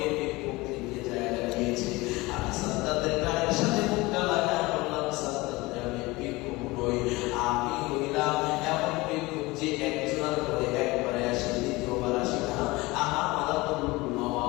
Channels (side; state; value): right; quieter; 21.9 dB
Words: ভিক্ষুক দিকে জায়গা দিয়েছে? আমি সাদ্দামের গায়ের সাথে মুখটা লাগায় বললাম, সাদ্দাম, আমি ভিক্ষুক নই, আমি হইলাম এমন ভিক্ষুক যে একজনের করে একবারে আসে, দ্বিতীয়বার আসে না। আমার মালাতুল